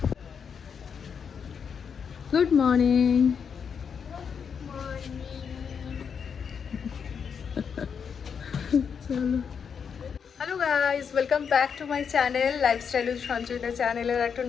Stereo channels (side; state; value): right; quieter; 6.8 dB